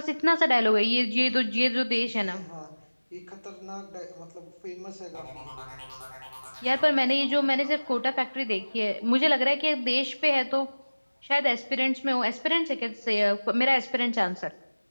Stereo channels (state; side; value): inverted; both; correlation -1.00